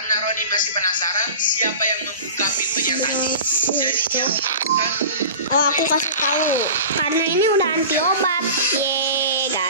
Roni masih penasaran siapa yang membuka pintunya tadi, jadi dia memutuskan. Oh, aku kasih tahu. Karena ini udah anti obat. Yeay,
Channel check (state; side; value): inverted; both; correlation -0.36